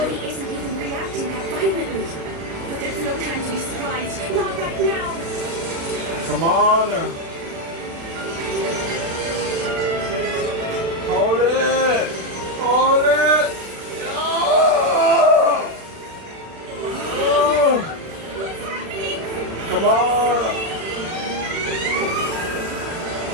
isn't even reacting that violently. But there's no time to be surprised. Not right now. Come on! Hold it! Hold it! Oh! Oh! What's happening? Come on!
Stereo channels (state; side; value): late; left; 36 ms